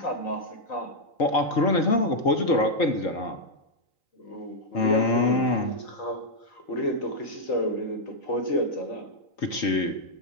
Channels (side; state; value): right; late; 3.9 ms